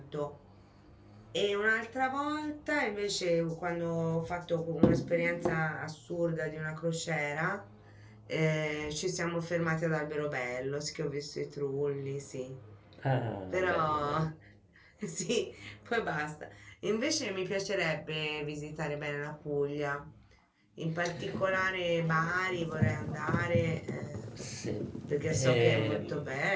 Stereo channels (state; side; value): identical; both; correlation 1.00